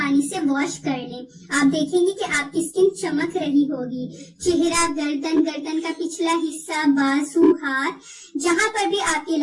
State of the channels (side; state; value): both; identical; correlation 1.00